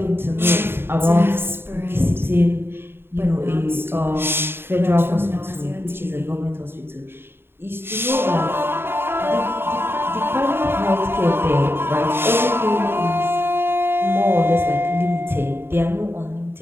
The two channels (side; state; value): left; late; 0.11 ms